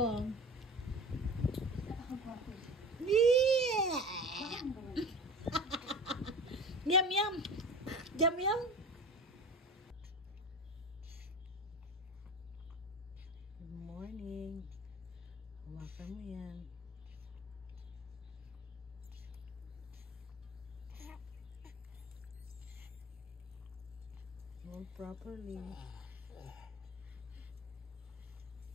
Yeah. Yum. Good morning. Hawakan mo yan. Hold properly.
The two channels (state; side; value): normal; both; correlation 0.34